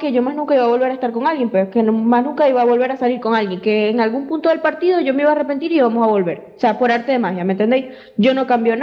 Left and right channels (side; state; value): both; identical; correlation 1.00